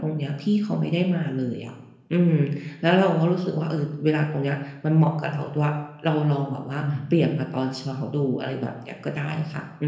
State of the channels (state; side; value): identical; both; correlation 1.00